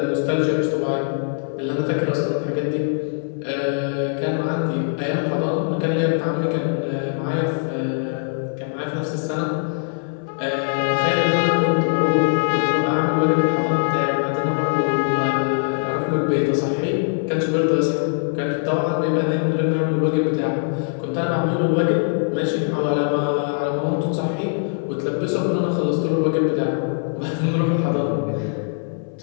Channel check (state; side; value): silent; right; 59 dB below the other